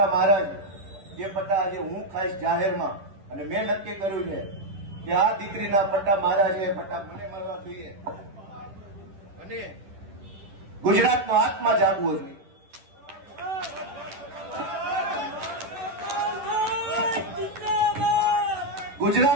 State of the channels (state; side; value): late; left; 10 ms